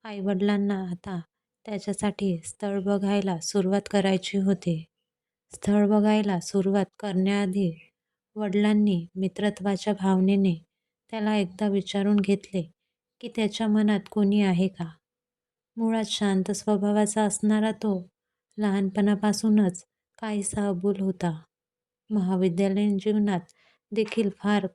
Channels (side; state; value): both; identical; correlation 1.00